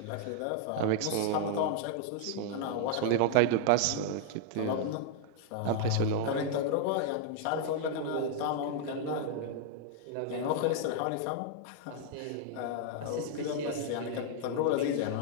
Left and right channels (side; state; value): both; different; correlation 0.00